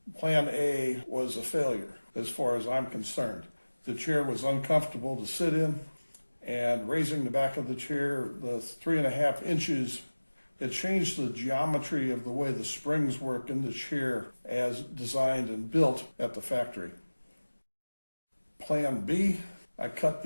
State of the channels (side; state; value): both; inverted; correlation -1.00